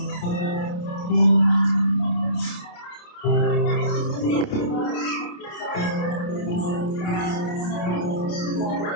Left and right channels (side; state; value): right; late; 28 ms